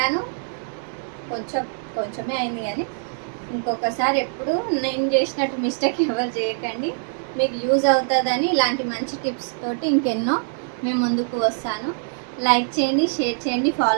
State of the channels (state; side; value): silent; left; digital silence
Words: కొంచెమే అయింది. కానీ ఇంకొకసారి ఎప్పుడు నేను చేసినట్టు మిస్టేక్ ఎవరు చేయకండి. మీకు యూజ్ అవుతుందని ఇలాంటి మంచి టిప్స్ తోటి ఇంకెన్నో మేము ముందుకు వస్తాను. లైక్ చేయండి, షేర్ చేయండి,